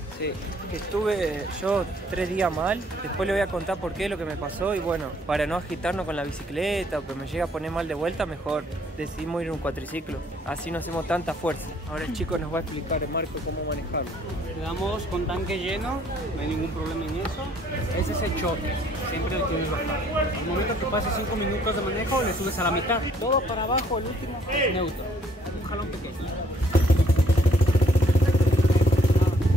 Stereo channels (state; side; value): normal; both; correlation 0.64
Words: Sí, que estuve yo 3 días mal, después le voy a contar por qué lo que me pasó y bueno, para no agitarnos con la bicicleta o que me llegue a poner mal de vuelta, mejor decidimos ir en un cuatriciclo, así no hacemos tanta fuerza. Ahora el chico nos va a explicar, Marco, cómo manejarlo. Le damos con tanque lleno, no hay ningún problema en eso. Ese es el choque, siempre lo tienes bajado. Al momento que pases 5 minutos de manejo, le subes a la mitad. Todo para abajo, el último, neutro. Un jalón pequeño.